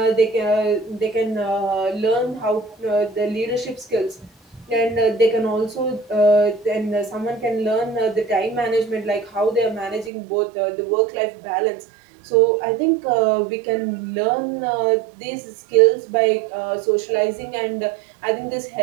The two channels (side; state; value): left; drops out; at 10.1 s